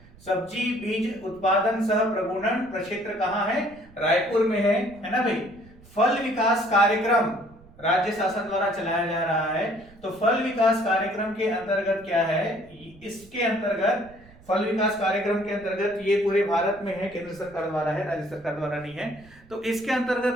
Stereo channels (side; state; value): right; noise; rumble, 24 dB below the sound